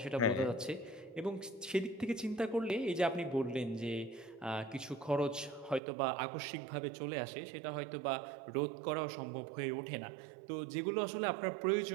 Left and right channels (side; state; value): left; drops out; at 5.8 s